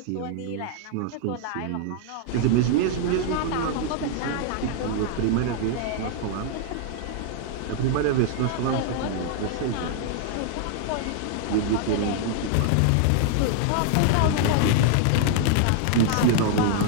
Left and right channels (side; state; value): both; different; correlation 0.00